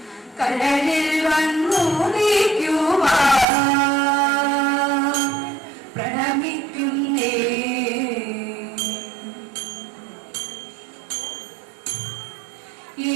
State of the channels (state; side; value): drops out; left; at 3.5 s